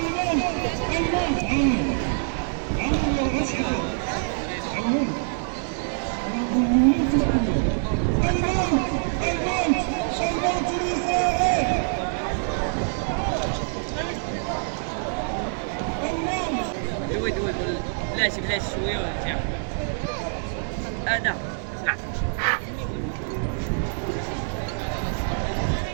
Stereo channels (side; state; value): left; silent; digital silence